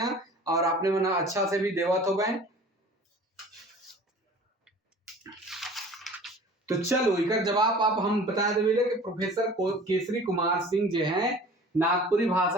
और आपने मन अच्छा से भी देवत हो गए। तो चलो इकर जवाब आप हम बता देवे कि प्रोफेसर केसरी कुमार सिंह जो है नागपुरी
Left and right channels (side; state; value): both; normal; correlation 0.44